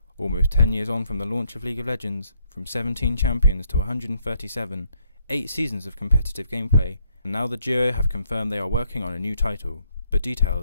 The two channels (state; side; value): inverted; both; correlation -0.72